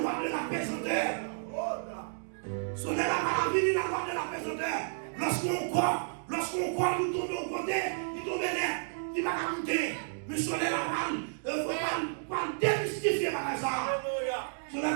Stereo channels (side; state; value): left; silent; digital silence